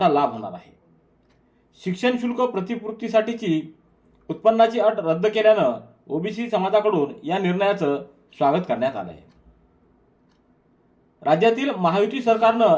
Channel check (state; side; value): identical; both; correlation 1.00